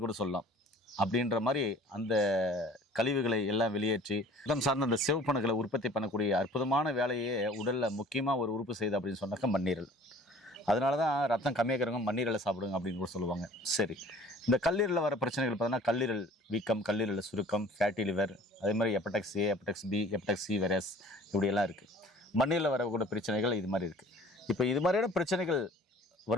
கூட சொல்லலாம். அப்படின்ற மாதிரி அந்த கழிவுகளை எல்லாம் வெளியேற்றி உடல் சார்ந்த அந்த சிவப்பணுக்களை உற்பத்தி பண்ணக்கூடிய அற்புதமான வேலையே உடலில் முக்கியமாக ஒரு உறுப்பு செய்யுது அப்படின்னு சொன்னாக்கா மண்ணீரல். அதனால தான் ரத்தம் கம்மியாக்கிறவங்க மண்ணீரலை சாப்பிடுங்க அப்படின்னு கூட சொல்லுவாங்க. சரி, இந்த கல்லீரலில் வர பிரச்சனைகள் பார்த்தீங்கன்னா கல்லீரல் வீக்கம், கல்லீரல் சுருக்கம், ஃபேட்டி லிவர், அதே மாதிரி hepatitis A, hepatitis B, hepatitis C virus இப்படியெல்லாம் இருக்குது. மண்ணீரலில் வரக்கூடிய பிரச்சனைகள் இது மாதிரி இருக்குது. இப்போ இது மாதிரியான பிரச்சனைகள்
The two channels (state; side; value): normal; both; correlation 0.49